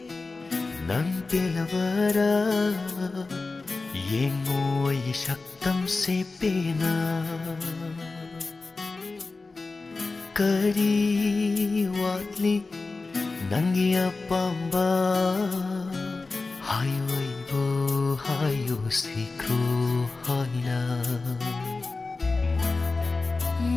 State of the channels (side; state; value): right; quieter; 3.7 dB